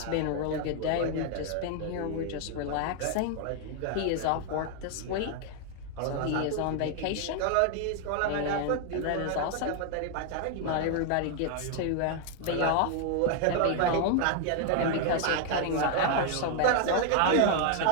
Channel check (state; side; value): different; both; correlation 0.00